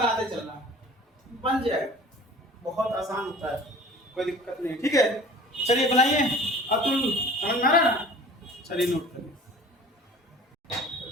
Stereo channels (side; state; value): both; normal; correlation 0.44